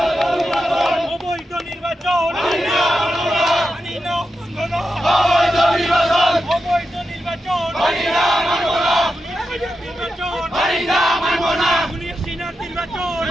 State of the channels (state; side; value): normal; both; correlation 0.89